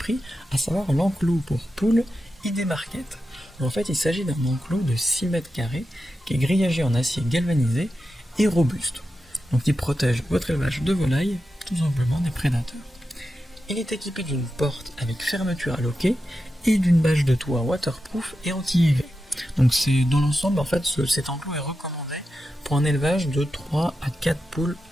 à savoir l'enclos pour poules ID Market. En fait, il s'agit d'un enclos de 6 mètres carrés qui est grillagé en acier galvanisé et robuste. Donc il protège votre élevage de volailles, tout simplement des prédateurs. Il est équipé d'une porte avec fermeture à loquet et d'une bâche de toit waterproof et anti-UV. Donc c'est dans l'ensemble, en fait, cet enclos est recommandé pour un élevage de 3 à 4 poules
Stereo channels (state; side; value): normal; both; correlation 0.90